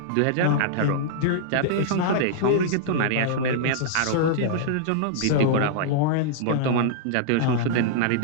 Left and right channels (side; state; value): both; different; correlation -0.02